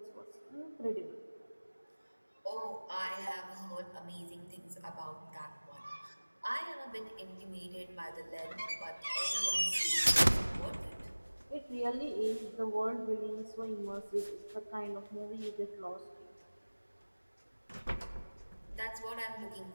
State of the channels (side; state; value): both; inverted; correlation -1.00